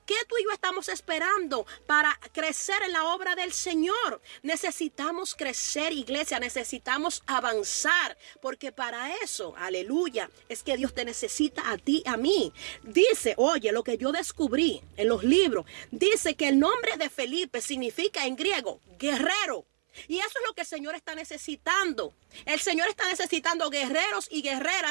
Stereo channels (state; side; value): silent; left; 58 dB below the other